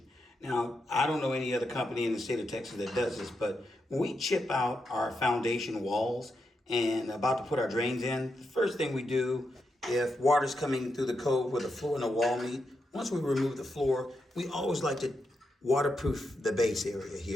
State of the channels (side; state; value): both; normal; correlation 0.84